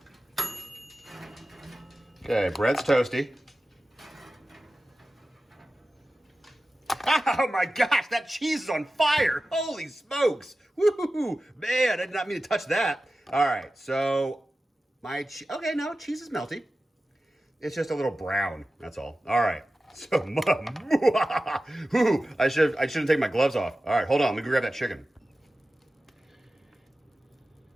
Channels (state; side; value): normal; both; correlation 0.95